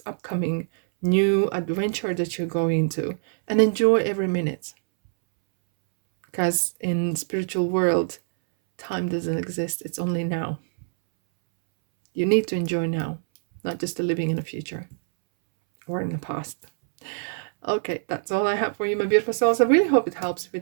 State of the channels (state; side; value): silent; left; 62 dB below the other